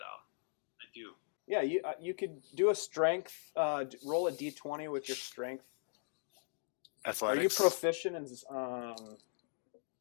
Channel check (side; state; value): right; silent; digital silence